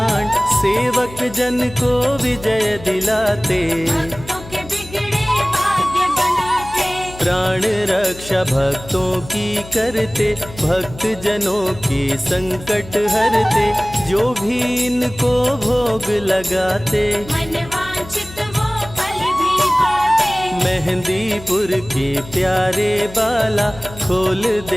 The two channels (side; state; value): left; noise; hum, 16 dB below the sound